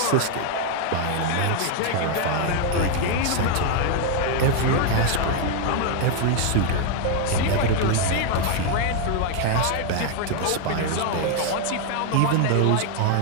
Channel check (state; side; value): different; both; correlation 0.00